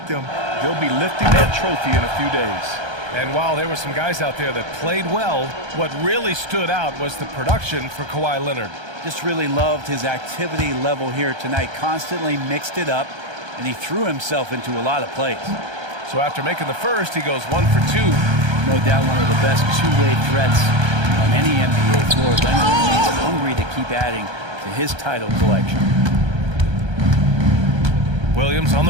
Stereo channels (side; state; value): left; late; 1.3 ms